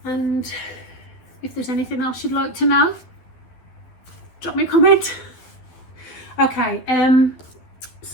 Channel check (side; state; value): right; late; 12 ms